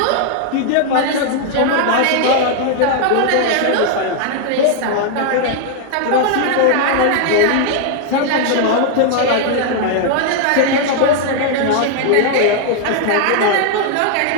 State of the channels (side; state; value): both; different; correlation 0.00